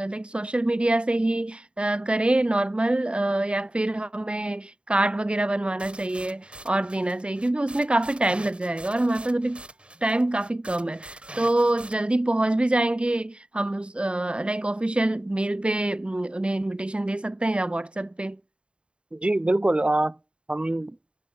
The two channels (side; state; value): left; late; 0.055 ms